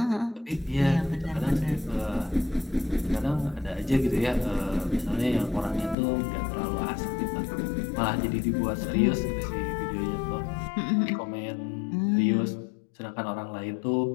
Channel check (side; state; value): right; drops out; at 6.0 s